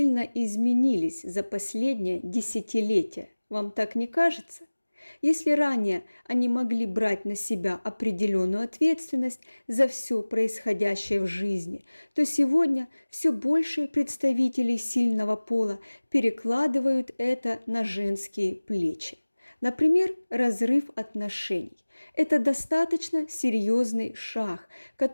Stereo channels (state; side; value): inverted; both; correlation -1.00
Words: изменились за последнее десятилетие. Вам так не кажется? Если ранее они могли брать на себя определенную ответственность за все происходящее в жизни, то сегодня все больше представителей сильного пола перекладывают это на женские плечи. Например, разрыв отношений. Это достаточно серьезный шаг,